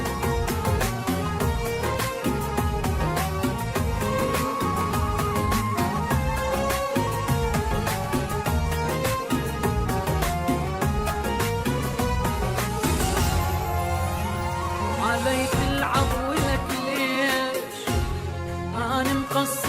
علي تلعب ولك ليش انا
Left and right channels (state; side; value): identical; both; correlation 1.00